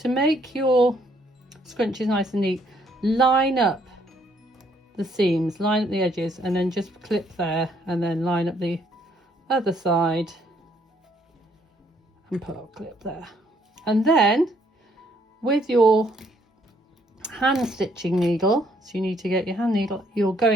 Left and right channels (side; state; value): both; normal; correlation 0.68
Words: make your scrunchies nice and neat, line up the seams, line up the edges, and then just clip there, and then line up the other side and put a clip there. And then with your hand stitching needle, so you need to get your hand needle, you're